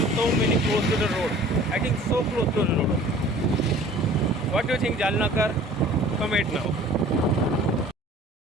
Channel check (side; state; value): both; normal; correlation 0.47